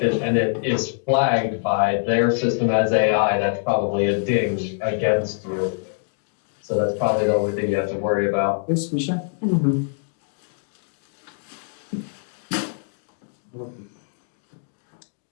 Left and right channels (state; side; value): silent; right; digital silence